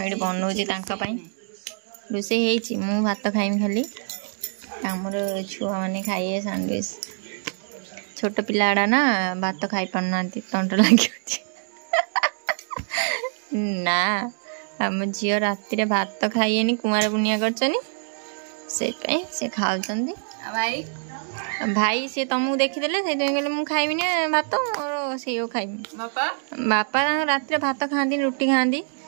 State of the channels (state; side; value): silent; left; 62 dB below the other